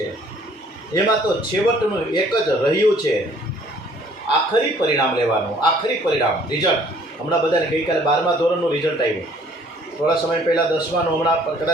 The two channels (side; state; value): both; normal; correlation 0.58